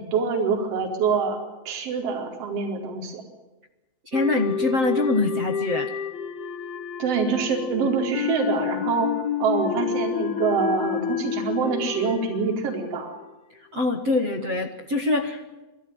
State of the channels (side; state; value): left; late; 7.8 ms